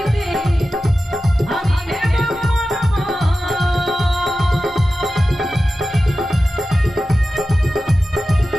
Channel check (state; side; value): normal; both; correlation 0.93